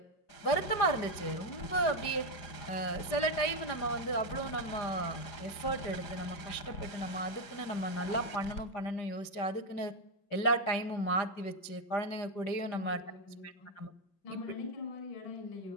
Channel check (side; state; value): right; late; 5.0 ms